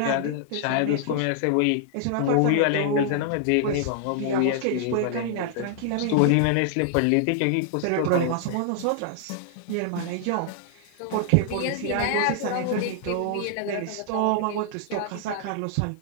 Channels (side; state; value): both; different; correlation -0.01